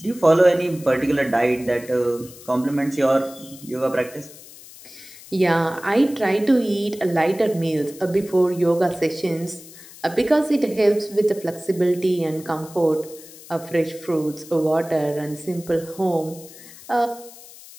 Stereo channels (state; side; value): noise; left; hiss, 19 dB below the sound